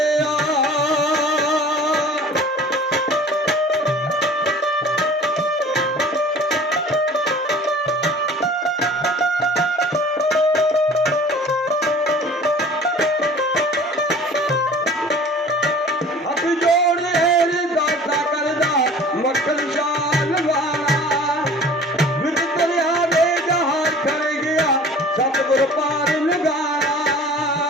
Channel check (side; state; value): both; normal; correlation 0.46